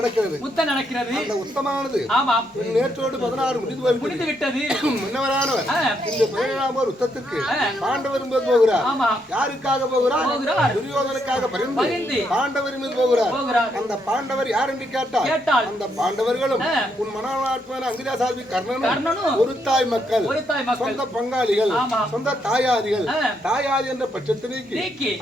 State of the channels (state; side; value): normal; both; correlation 0.76